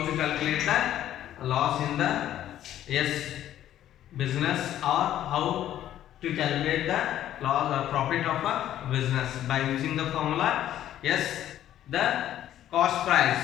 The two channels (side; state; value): right; quieter; 12.0 dB